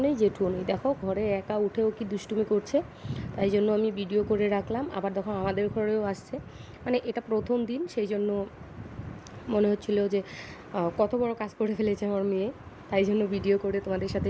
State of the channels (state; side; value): identical; both; correlation 1.00